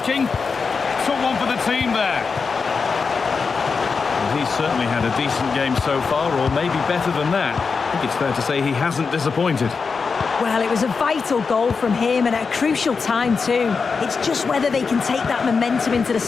Took one for the team there. He's certainly had a decent game so far, or maybe better than that. I think it's fair to say he hasn't disappointed. Well, it was a vital goal from him and at a crucial time too. It's just whether they can take that momentum into the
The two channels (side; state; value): right; quieter; 5.1 dB